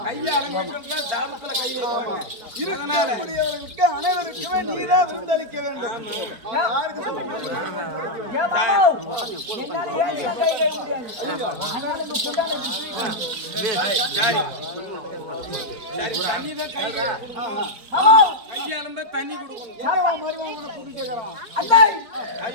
கையை அலம்பிட்டு சாபத்துல கை வைப்பாங்க. இருக்கக்கூடியவர்களுக்கு அனைவருக்குமே நீதான் விருந்தளிக்க வேண்டும். யாருக்கு தண்ணிதான் கையாளும்ப தண்ணி கொடுக்கணும்.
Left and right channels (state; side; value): late; left; 4.4 ms